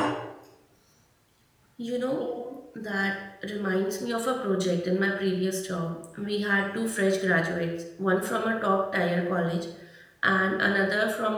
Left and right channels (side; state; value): both; identical; correlation 1.00